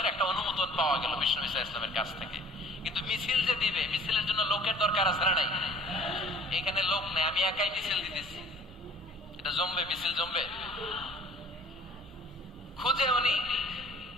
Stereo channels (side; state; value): both; normal; correlation 0.50